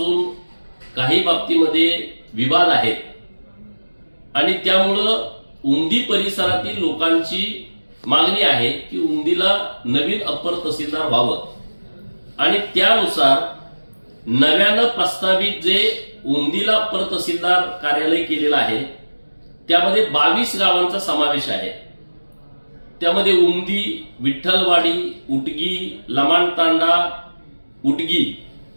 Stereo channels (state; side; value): inverted; both; correlation -1.00